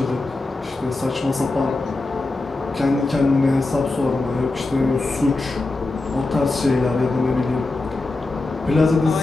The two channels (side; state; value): right; quieter; 3.2 dB